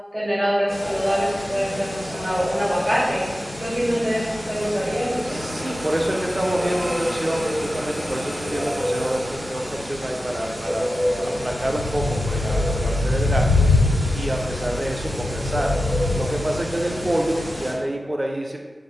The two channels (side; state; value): both; normal; correlation 0.91